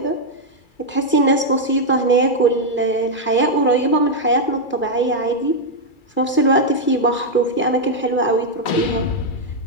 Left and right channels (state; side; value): late; right; 2.3 ms